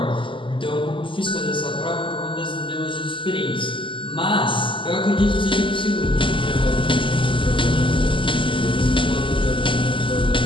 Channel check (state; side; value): late; right; 0.25 ms